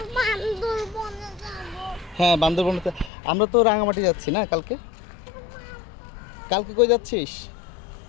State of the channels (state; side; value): drops out; right; at 3.1 s